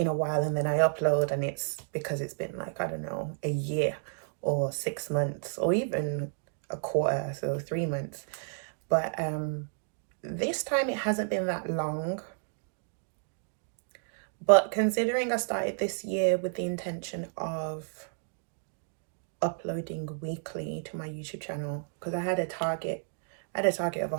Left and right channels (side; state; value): left; silent; digital silence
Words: a while, and then I upload and it's because it's been like, I don't know, a year or 6 months or even a quarter, so 3 months. But this time it hasn't been that long. But considering I started this year with the intention of uploading weekly to my YouTube channel, because I had a target of